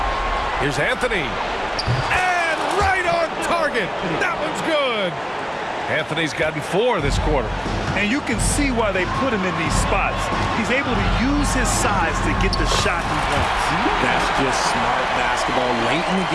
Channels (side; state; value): both; identical; correlation 1.00